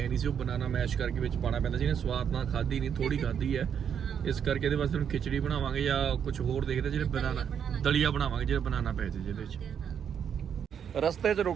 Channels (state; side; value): quieter; left; 8.0 dB